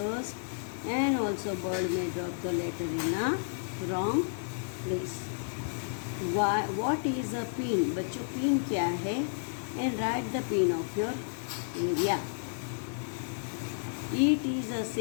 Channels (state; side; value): silent; right; 57 dB below the other